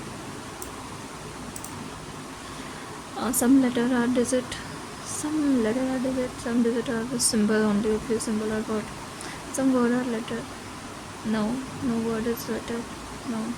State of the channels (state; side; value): identical; both; correlation 1.00